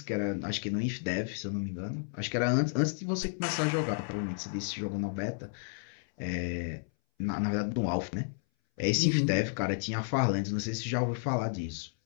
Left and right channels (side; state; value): right; silent; 57 dB below the other